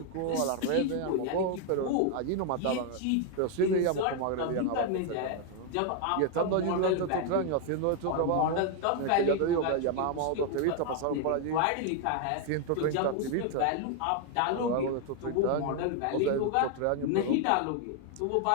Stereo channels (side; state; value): both; different; correlation 0.01